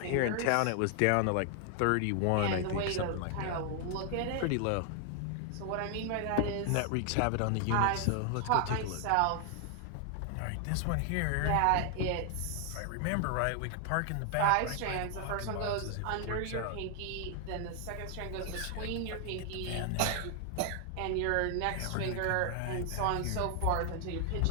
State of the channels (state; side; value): different; both; correlation 0.00